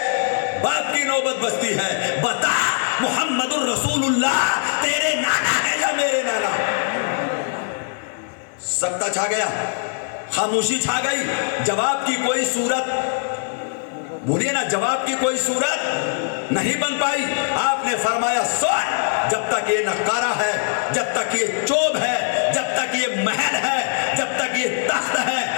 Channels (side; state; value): right; silent; digital silence